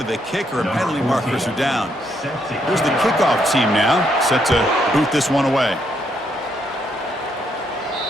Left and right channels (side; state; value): both; normal; correlation 0.74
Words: the kicker, and penalty markers are down. Here's the kickoff team now, set to boot this one away.